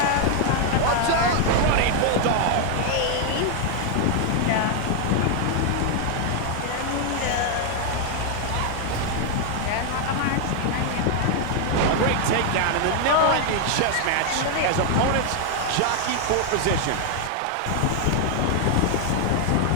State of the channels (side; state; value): both; different; correlation 0.00